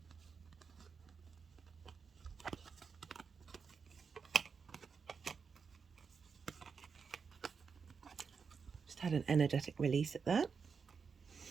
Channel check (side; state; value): left; quieter; 5.7 dB